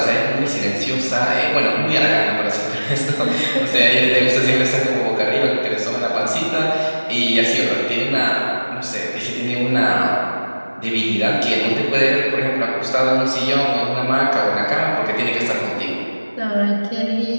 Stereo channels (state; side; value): inverted; both; correlation -1.00